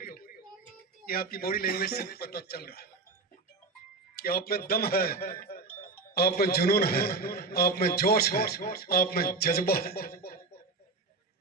ये आपकी बॉडी लैंग्वेज से पता चल रहा है कि आप में दम है, आप में जुनून है, आप में जोश है, आप में जज्बा है।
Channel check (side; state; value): left; quieter; 3.7 dB